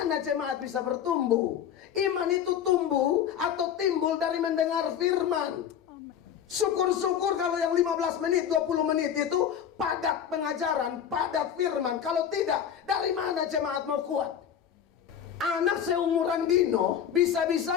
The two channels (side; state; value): right; quieter; 8.9 dB